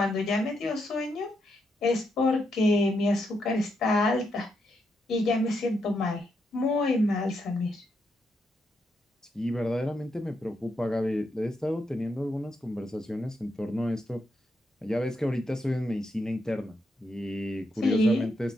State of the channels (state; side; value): normal; both; correlation 0.81